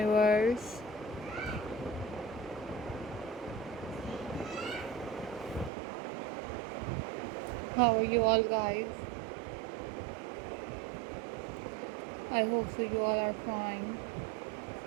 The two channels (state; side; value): drops out; left; at 5.7 s